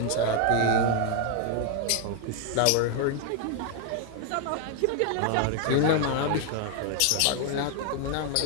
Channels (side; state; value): both; different; correlation 0.01